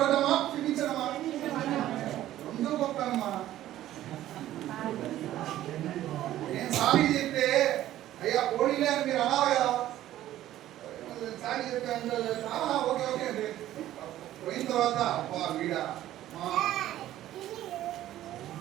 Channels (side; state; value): left; quieter; 13.5 dB